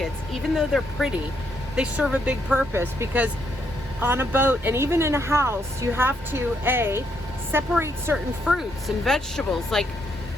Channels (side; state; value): both; normal; correlation 0.75